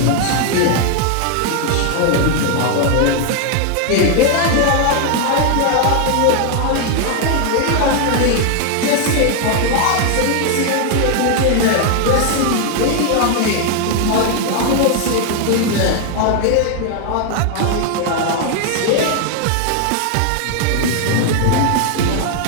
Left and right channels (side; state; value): both; different; correlation 0.00